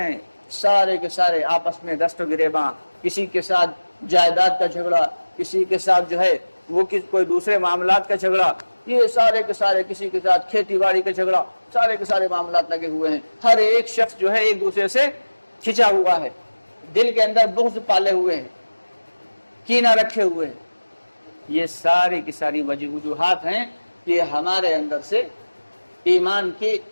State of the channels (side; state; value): both; inverted; correlation -1.00